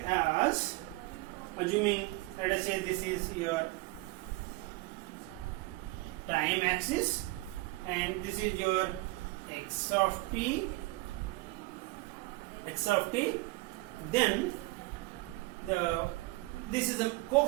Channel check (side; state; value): left; quieter; 21.9 dB